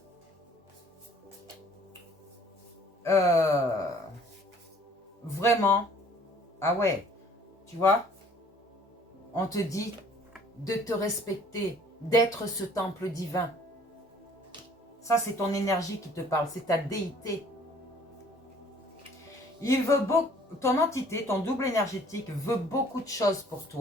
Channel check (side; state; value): both; normal; correlation 0.55